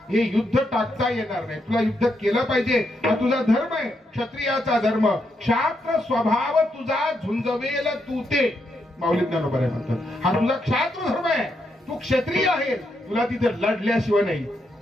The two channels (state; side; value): normal; both; correlation 0.80